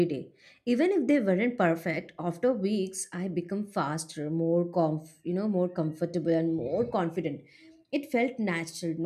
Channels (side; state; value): both; identical; correlation 1.00